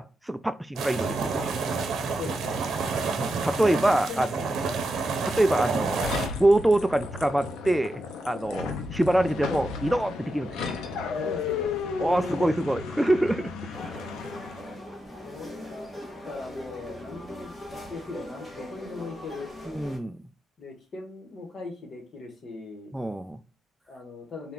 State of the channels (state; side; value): normal; both; correlation 0.87